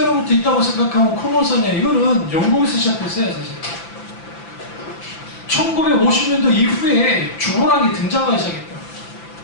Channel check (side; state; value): right; late; 5.9 ms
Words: 있다고 생각하면 코너선이야. 이거는 영국에서 시작했어요, 사실. 1950년도 이후에 주보라는 게 등장하기 시작했다.